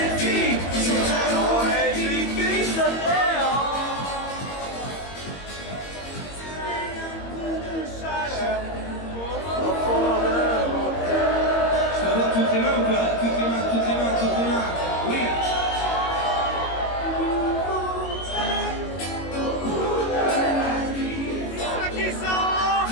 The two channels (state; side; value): late; right; 22 ms